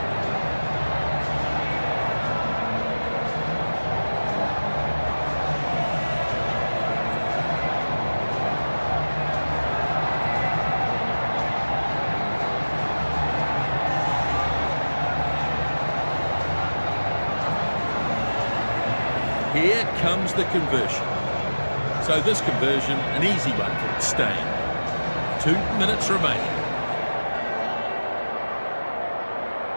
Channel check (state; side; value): inverted; both; correlation -1.00